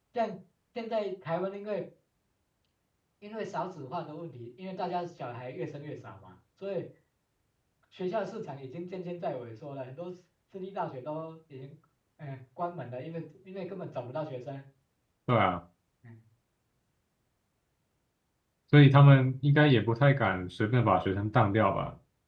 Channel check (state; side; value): identical; both; correlation 1.00